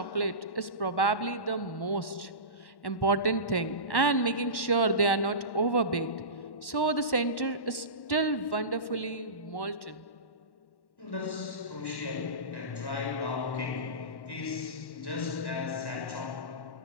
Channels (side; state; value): right; late; 1.1 ms